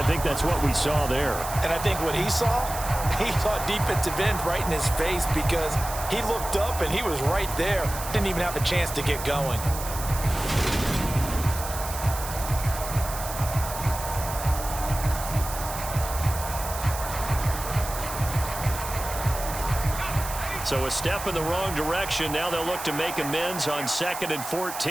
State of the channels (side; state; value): right; noise; hiss, 9 dB below the sound